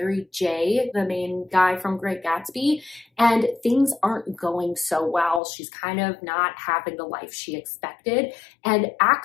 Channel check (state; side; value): drops out; right; at 5.4 s